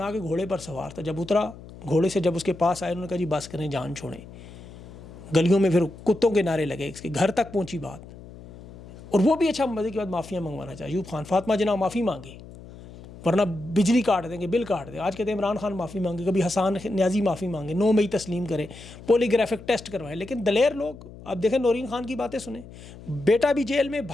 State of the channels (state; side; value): noise; left; hum, 17 dB below the sound